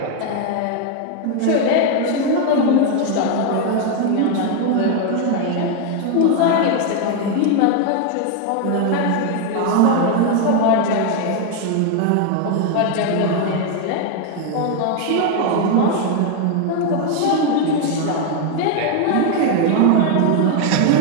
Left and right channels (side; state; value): both; different; correlation 0.01